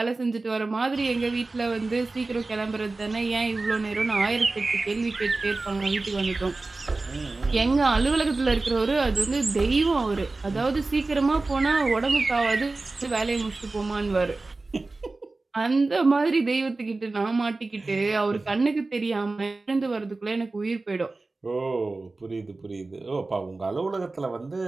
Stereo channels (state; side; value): quieter; left; 3.4 dB